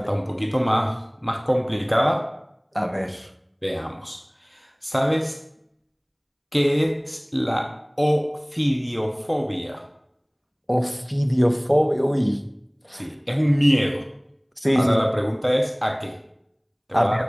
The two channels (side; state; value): both; identical; correlation 1.00